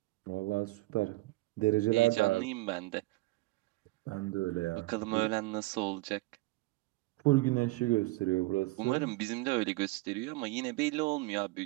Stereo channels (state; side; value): quieter; left; 21.5 dB